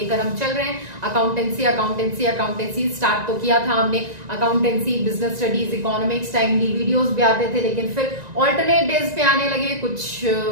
हम चल रहे हैं, अकाउंटेंसी स्टार्ट तो किया था हमने, accountancy, business studies, economics, timely videos भी आते थे, लेकिन फिर ऑल्टरनेट डेज पे आने लगे, कुछ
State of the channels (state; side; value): late; left; 1.9 ms